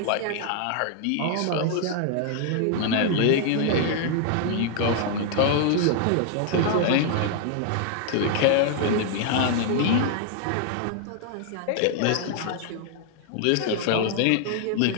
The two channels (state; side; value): different; both; correlation 0.00